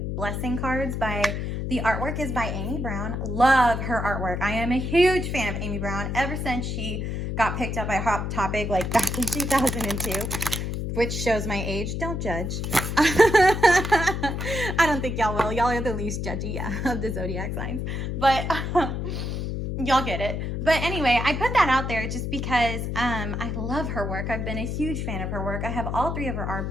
Blessing cards by, the artwork is by Amy Brown. Love her artwork. I am a huge fan of Amy Brown ever since she got picked up by Hot Topic like back in 2002, which shows my age. Don't judge. I don't think y'all will. Y'all are the least judgy of the zodiac signs, but y'all get it. But anyway, I put that out there just because I love her work. I've been a huge fan of her work. I have all 3 of her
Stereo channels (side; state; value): left; noise; hum, 3 dB below the sound